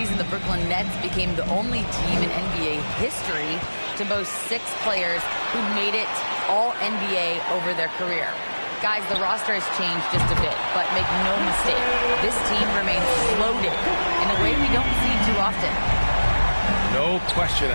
the Brooklyn Nets became the only team in NBA history to boast 6 players who made it all NBA over their career. Guys, the roster has changed just a bit, but make no mistake, this team remains loaded in a way we don't see too often. No question,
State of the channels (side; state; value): both; inverted; correlation -1.00